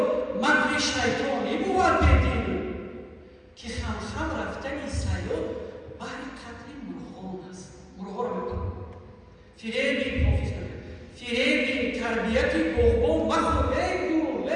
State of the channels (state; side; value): identical; both; correlation 1.00